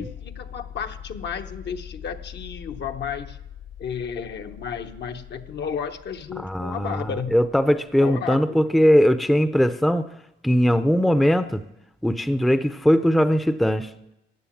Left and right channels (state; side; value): normal; both; correlation 0.93